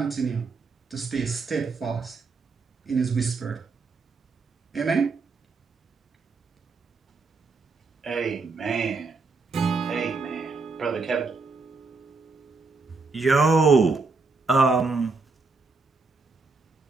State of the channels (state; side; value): quieter; left; 4.1 dB